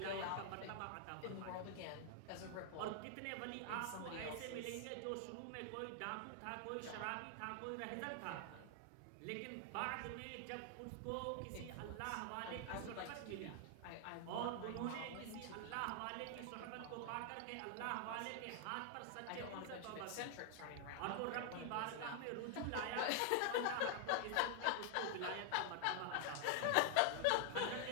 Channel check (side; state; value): both; different; correlation 0.00